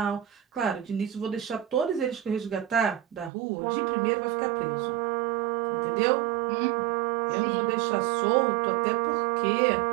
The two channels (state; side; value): drops out; left; at 3.3 s